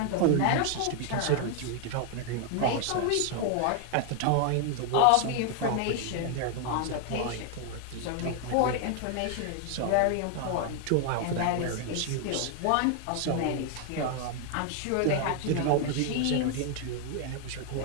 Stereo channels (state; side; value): different; both; correlation 0.00